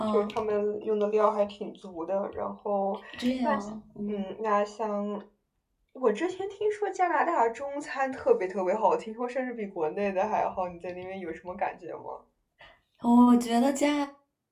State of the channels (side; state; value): both; identical; correlation 1.00